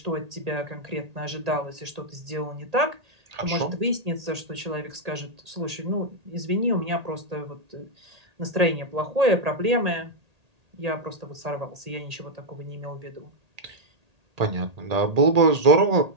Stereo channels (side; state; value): left; late; 1.8 ms